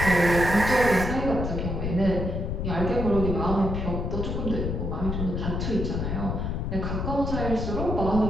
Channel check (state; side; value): noise; left; rumble, 2 dB below the sound